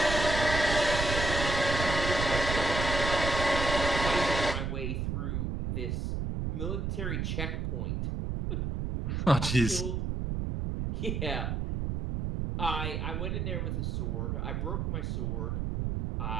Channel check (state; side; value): noise; right; rumble, 1 dB below the sound